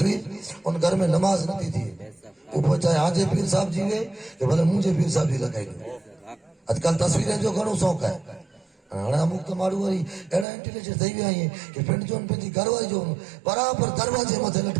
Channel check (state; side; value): drops out; left; at 10.5 s